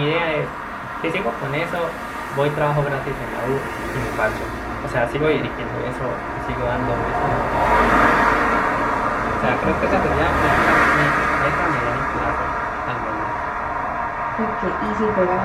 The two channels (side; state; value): both; identical; correlation 1.00